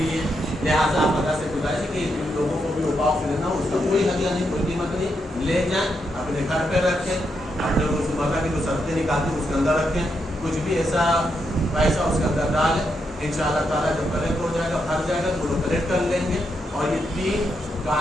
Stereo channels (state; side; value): normal; both; correlation 0.81